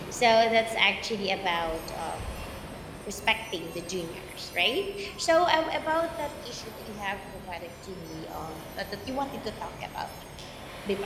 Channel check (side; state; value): both; identical; correlation 1.00